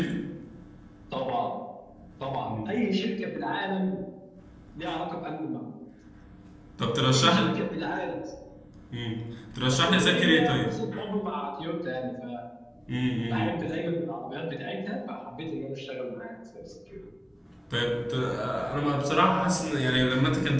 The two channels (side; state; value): both; identical; correlation 1.00